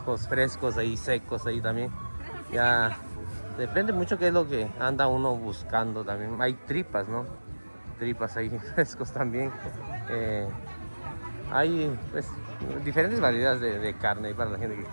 frescos, ahí secos, ahí también. Ya depende mucho qué es lo que anda uno buscando también. Hay tripas, ¿no? Tripas ahí frescos también. Hay pues diferentes variedades de carne para la gente que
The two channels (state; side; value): inverted; both; correlation -1.00